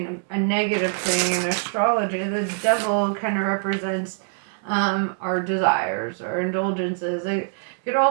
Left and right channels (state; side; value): silent; left; digital silence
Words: a negative thing in astrology. The devil kind of represents our desires, our indulgences. It could